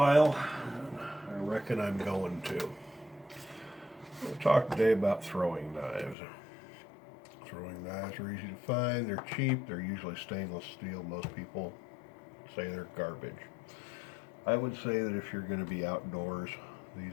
I reckon I'm going to. We'll talk today about throwing knives. Throwing knives are easy to find, they're cheap, they're usually stainless steel. Most people say they're garbage. I would say that if you're going to be outdoors,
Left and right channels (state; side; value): drops out; right; at 6.2 s